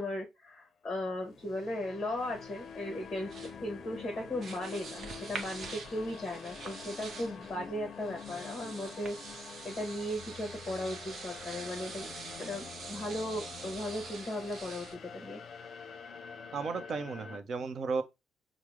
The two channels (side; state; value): both; normal; correlation 0.78